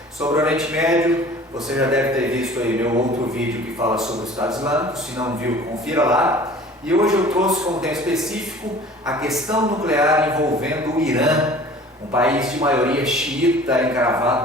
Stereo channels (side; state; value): both; normal; correlation 0.46